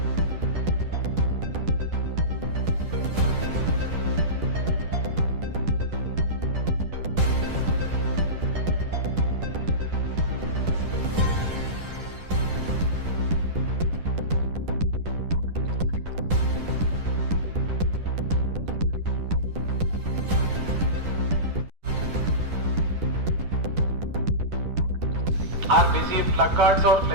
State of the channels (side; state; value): left; late; 10 ms